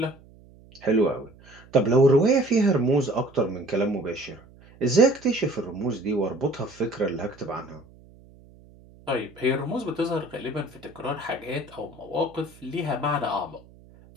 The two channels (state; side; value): noise; right; hum, 24 dB below the sound